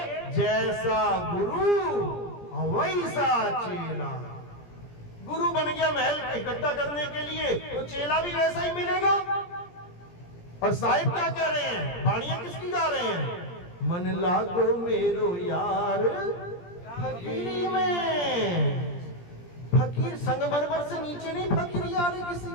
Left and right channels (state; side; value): late; right; 17 ms